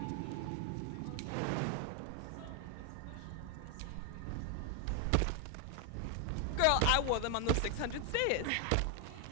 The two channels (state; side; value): different; both; correlation 0.00